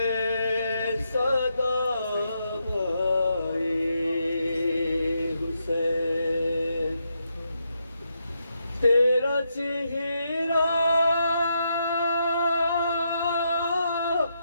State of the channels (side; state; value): both; inverted; correlation -0.81